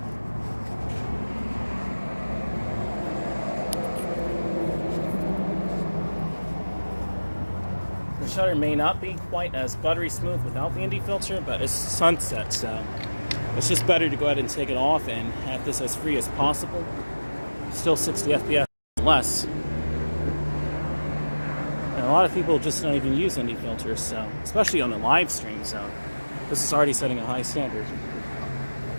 The shutter may not be quite as buttery smooth without the ND filter, but it's sunset, so it's just better to go ahead and take it off and have this as free as possible. Still 60 FPS less. And a lot of people just don't even use ND filters, so especially on the live stream, so this is already setting a high standard.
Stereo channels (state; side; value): inverted; both; correlation -1.00